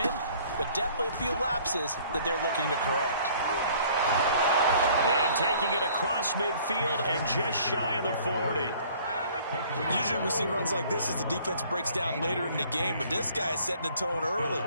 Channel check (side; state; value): both; inverted; correlation -0.55